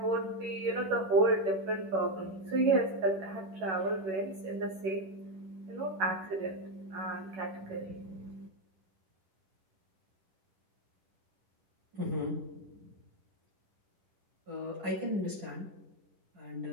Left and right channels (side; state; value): left; late; 11 ms